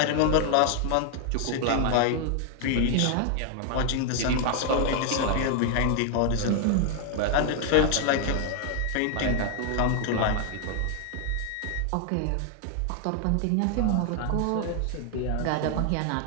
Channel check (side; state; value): both; different; correlation 0.00